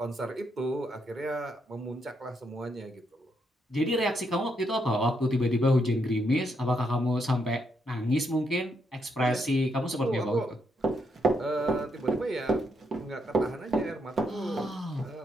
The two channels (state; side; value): normal; both; correlation 0.77